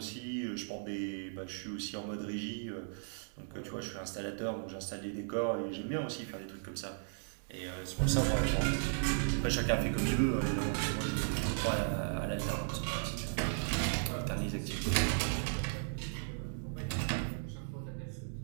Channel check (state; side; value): silent; left; digital silence